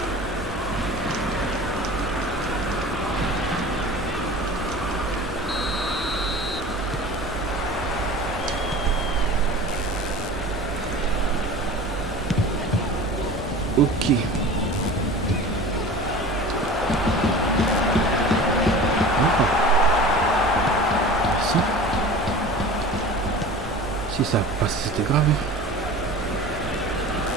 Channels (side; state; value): both; normal; correlation 0.38